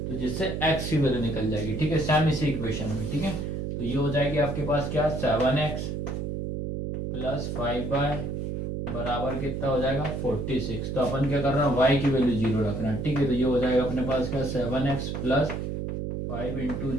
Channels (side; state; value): right; noise; hum, 3 dB below the sound